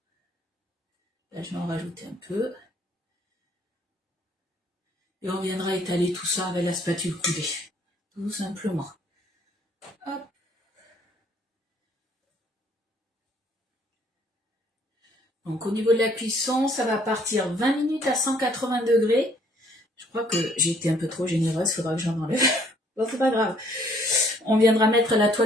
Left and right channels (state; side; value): normal; both; correlation 0.63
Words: Là, je vais en rajouter un peu. Et on viendra étaler tout ça avec la spatule coudée. Tout simplement. Hop. Donc au niveau de la cuisson, ça va partir 20 minutes à 180 degrés. Je crois que j'ai été un peu trop généreuse, il faudra que j'en enlève. Bon, c'est pas grave. On viendra mettre la